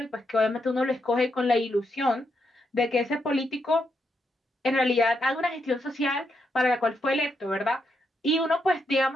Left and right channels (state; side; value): normal; both; correlation 0.81